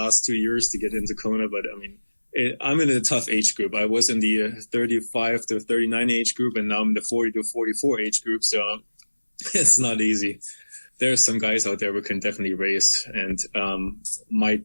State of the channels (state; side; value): inverted; both; correlation -1.00